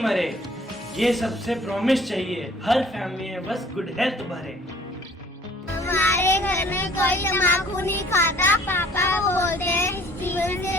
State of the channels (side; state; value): both; normal; correlation 0.54